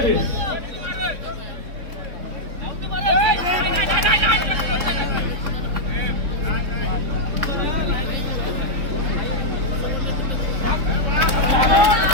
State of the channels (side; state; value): left; late; 3.6 ms